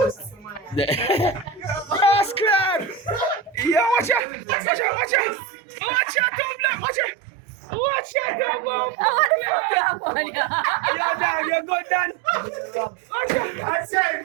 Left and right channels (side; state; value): left; drops out; at 4.2 s